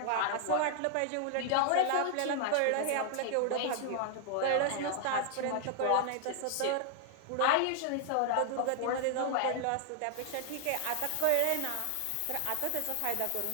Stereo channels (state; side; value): different; both; correlation 0.00